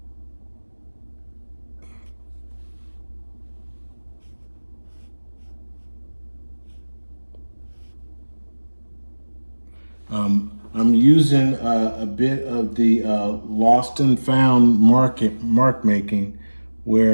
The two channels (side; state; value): both; inverted; correlation -1.00